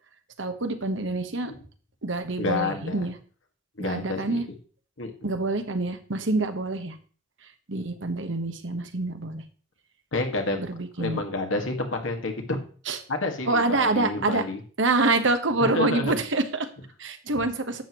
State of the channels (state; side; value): normal; both; correlation 0.12